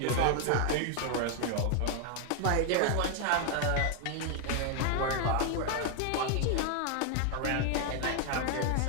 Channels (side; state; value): both; different; correlation 0.00